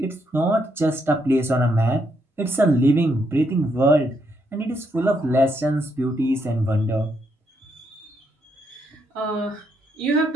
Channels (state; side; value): normal; both; correlation 0.76